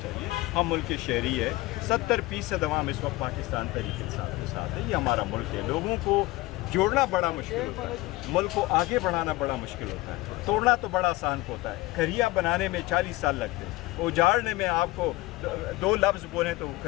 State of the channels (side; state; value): right; quieter; 19.9 dB